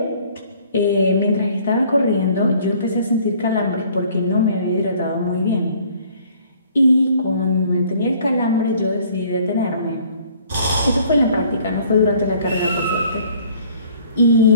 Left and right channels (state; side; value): inverted; both; correlation -0.57